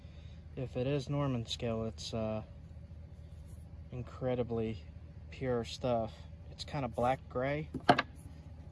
If it is Norman scale, it's incredibly pure stuff. It's kind of black gray.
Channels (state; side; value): identical; both; correlation 1.00